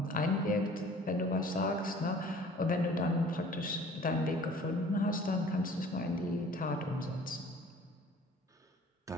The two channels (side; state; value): both; normal; correlation 0.49